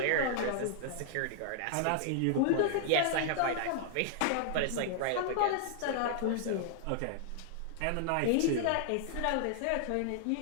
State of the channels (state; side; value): different; both; correlation -0.01